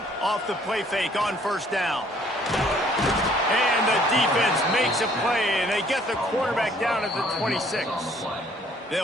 Off the play fake on first down. And the defense makes a play, and they get the quarterback down at the 26.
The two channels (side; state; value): both; normal; correlation 0.61